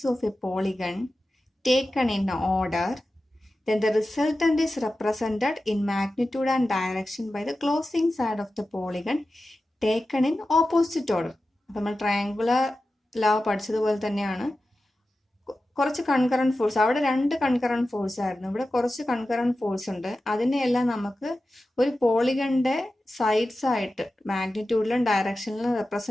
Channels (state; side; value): normal; both; correlation 0.93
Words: of a polygon taken in order, then the resultant is represented in magnitude and direction by the closing side of the polygon taken in opposite order. നമ്മൾ triangular law പഠിച്ചതുപോലെ തന്നെയാണ്. കുറച്ച് concurrent force, അവിടെ രണ്ട് concurrent force ആയിരുന്നു, ഇവിടെ കുറച്ച് concurrent force ഉണ്ട്. അതിനെയെല്ലാം നമുക്ക് ഒരു പോളിഗണിന്റെ സൈഡ്സ് ആയിട്ട് മാഗ്നിറ്റ്യൂഡിലും ഡയറക്ഷനിലും